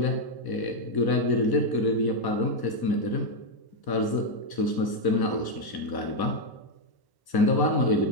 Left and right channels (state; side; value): late; right; 1.1 ms